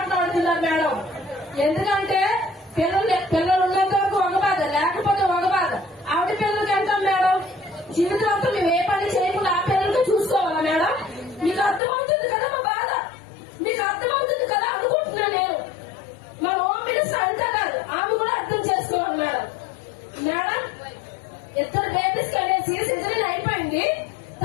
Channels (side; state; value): right; drops out; at 11.8 s